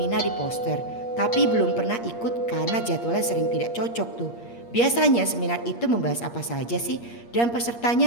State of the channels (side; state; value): right; late; 8.5 ms